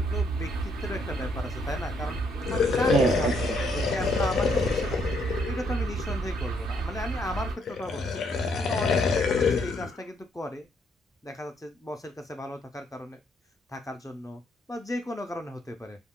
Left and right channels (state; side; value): normal; both; correlation 0.71